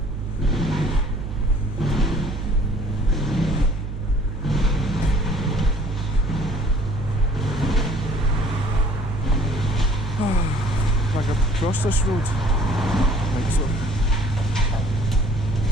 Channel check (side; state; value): right; noise; hum, 6 dB below the sound